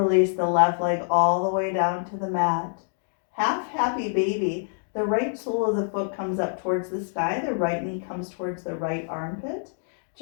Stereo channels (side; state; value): right; silent; digital silence